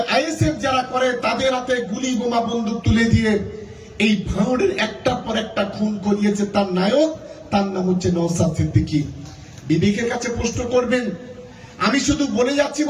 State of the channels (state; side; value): identical; both; correlation 1.00